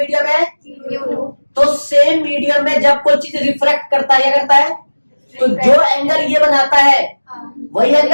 है म्यू2, तो सेम मीडियम में जब कोई चीज रिफ्रैक्ट करता है, क्या करता है? तो जो एंगल ये बनाता है वही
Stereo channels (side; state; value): both; inverted; correlation -1.00